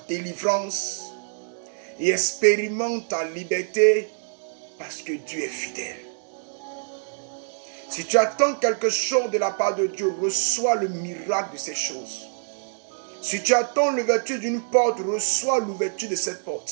délivrance. Et expérimente ta liberté parce que Dieu est fidèle. Si tu attends quelque chose de la part de Dieu, reçois le miracle de ces choses. Si tu attends l'ouverture d'une porte, reçois l'ouverture de cette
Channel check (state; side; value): silent; left; 62 dB below the other